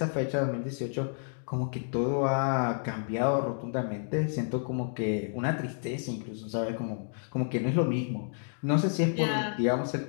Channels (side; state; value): right; silent; digital silence